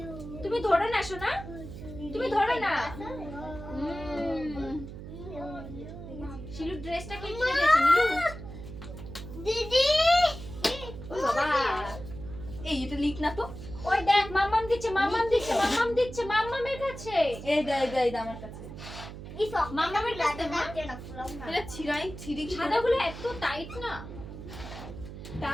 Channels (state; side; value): noise; right; hum, 11 dB below the sound